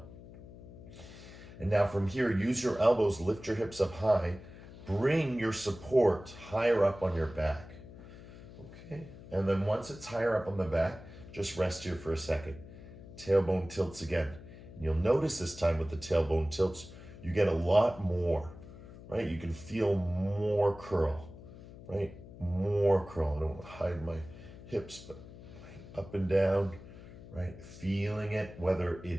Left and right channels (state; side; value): noise; left; hum, 16 dB below the sound